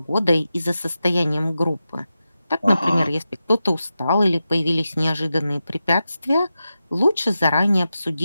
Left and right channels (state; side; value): inverted; both; correlation -0.91